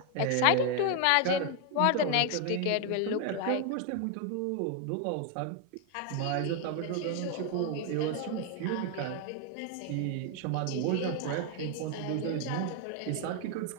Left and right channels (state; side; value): different; both; correlation 0.01